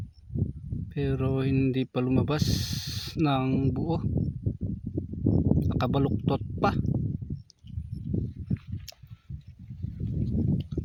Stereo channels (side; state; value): both; identical; correlation 1.00